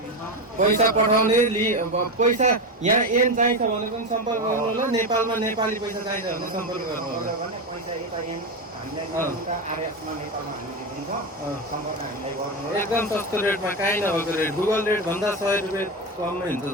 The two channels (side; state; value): both; normal; correlation 0.15